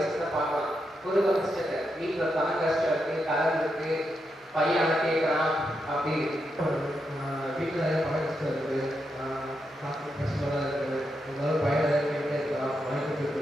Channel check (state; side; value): normal; both; correlation 0.84